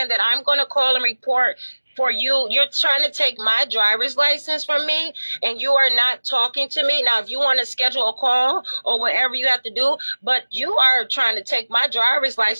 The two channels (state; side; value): inverted; both; correlation -1.00